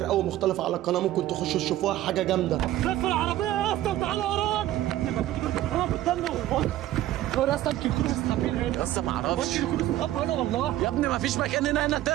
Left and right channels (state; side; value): quieter; left; 14.2 dB